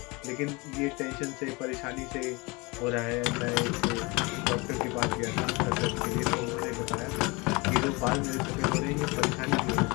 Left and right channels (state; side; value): quieter; right; 26.2 dB